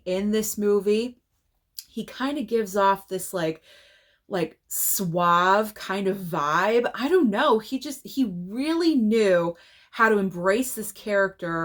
in this movie. He kind of gives off this like suave kind of vibe. I don't know. He really knew how to embrace this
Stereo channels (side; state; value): both; identical; correlation 1.00